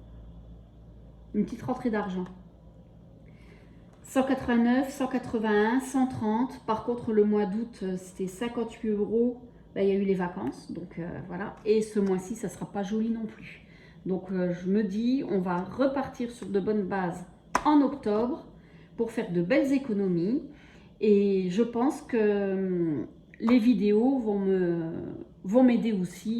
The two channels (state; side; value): identical; both; correlation 1.00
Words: une petite rentrée d'argent. 189, 181, 130. Par contre, le mois d'août, c'était 58 euros. Là, il y a eu les vacances, donc voilà. Et ce mois-ci, ça ne sera pas joli non plus. Donc, je me dis, on va repartir sur de bonnes bases en octobre pour faire de belles économies. Et je pense que les vidéos vont m'aider